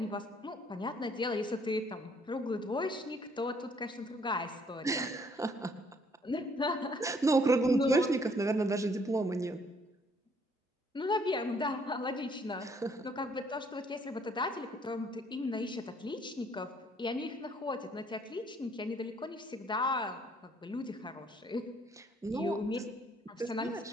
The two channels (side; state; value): both; normal; correlation 0.64